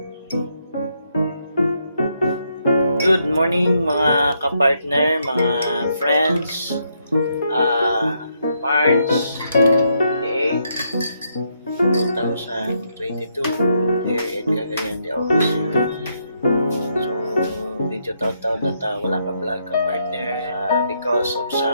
Good morning mga kapartner, mga friends. March 28, 2022, here in Cagayan de Oro City. So, video taon-taon na wala ka vlog ka partner because of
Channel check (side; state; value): both; inverted; correlation -0.77